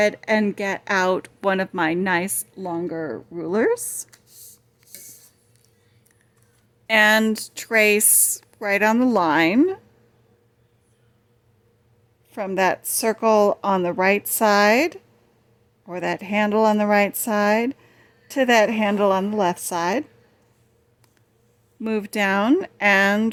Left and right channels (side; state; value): both; identical; correlation 1.00